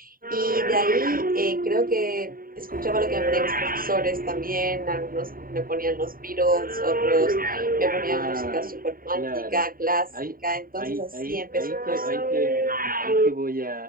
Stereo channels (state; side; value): late; left; 0.41 ms